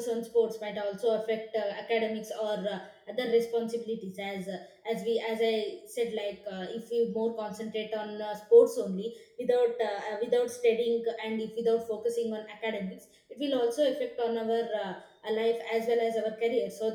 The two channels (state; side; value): identical; both; correlation 1.00